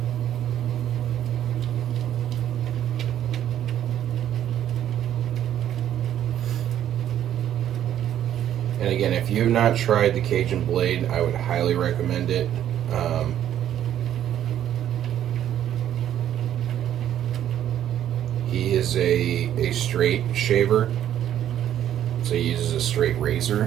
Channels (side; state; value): left; quieter; 10.9 dB